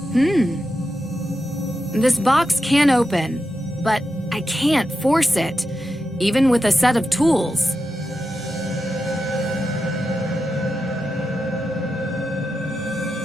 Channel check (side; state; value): both; normal; correlation 0.89